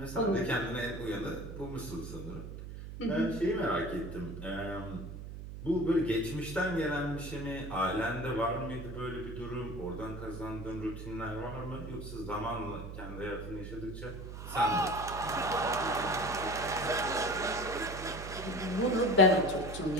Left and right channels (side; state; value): right; noise; hum, 9 dB below the sound